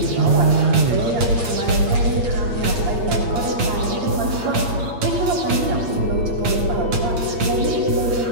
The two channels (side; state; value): left; late; 8.6 ms